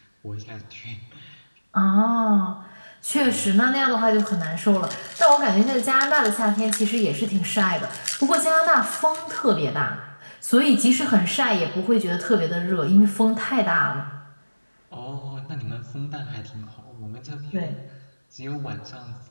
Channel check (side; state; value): both; inverted; correlation -1.00